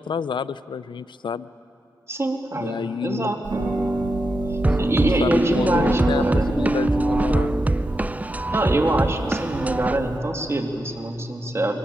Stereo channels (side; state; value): both; normal; correlation 0.86